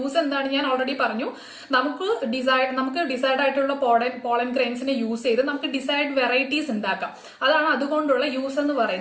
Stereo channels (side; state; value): both; identical; correlation 1.00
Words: എന്താണ് ഞാൻ ഓൾറെഡി പറഞ്ഞു. നമുക്ക് ഡിസൈഡ് ആയിട്ടുള്ള പോളൻ ഗ്രെയിൻസിനെ യൂസ് ചെയ്ത് നമുക്ക് ഡിസൈഡ് വെറൈറ്റീസ് ഉണ്ടാക്കാം. അതാണ് അതുകൊണ്ടുള്ള യൂസ് എന്ന്